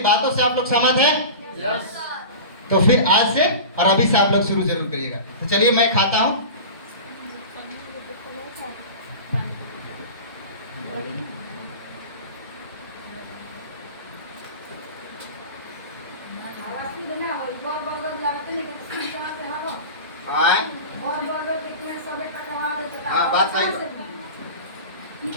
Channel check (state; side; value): inverted; both; correlation -0.32